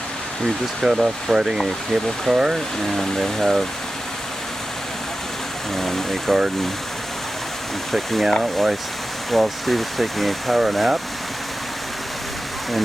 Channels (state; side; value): normal; both; correlation 0.93